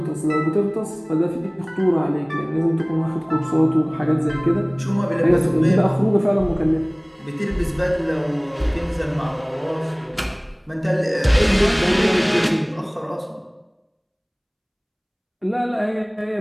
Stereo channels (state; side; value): identical; both; correlation 1.00